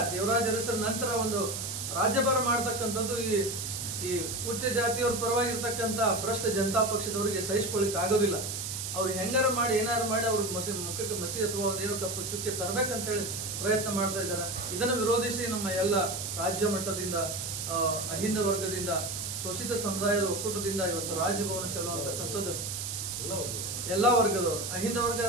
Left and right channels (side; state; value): right; noise; hiss, 4 dB below the sound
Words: ದೇವರಾಜ ಅರಸರ ನಂತರ ಒಂದು ರಾಜ್ಯಭಾರ ಮಾಡ್ತಕ್ಕಂಥದ್ದು ಈ ಉಚ್ಚ ಜಾತಿಯವ್ರ ಪರವಾಗಿರ್ತಕ್ಕಂಥ ಭ್ರಷ್ಟ ಜನತಾ ಪಕ್ಷದವರಿಗೆ ಸಹಿಸಿಕೊಳ್ಳಿಕ್ ಆಗೋದಿಲ್ಲ. ಅವ್ರು ಹೆಂಗಾರ ಮಾಡಿ ಏನಾರು ಮಾಡಿ ಅವ್ರ ಮುಖಕ್ಕೆ ಮಸಿ ಅಥವಾ ಒಂದೇನೋ ಕಪ್ಪು ಚುಕ್ಕೆ ತರಬೇಕಂತೇಳಿ ಪ್ರಯತ್ನ ಮಾಡ್ತಾ ಇದ್ದಾರೆ. ಇದನ್ನು ವಿರೋಧಿಸಿ ನಮ್ಮ ಎಲ್ಲ ರಾಜ್ಯ ಮಟ್ಟದಿಂದ, ಅಹಿಂದ ವರ್ಗದಿಂದ, ಶೋಷಿತ ಸಮುದಾಯದ ಒಕ್ಕೂಟದಿಂದ ಇವತ್ತು ರಾಜಭವನ ಚಲೋ ಅಂತಕ್ಕಂಥದ್ದು ಎಲ್ಲಾ ವರ್ಗದವರು, ಅಹಿಂದ ವರ್ಗ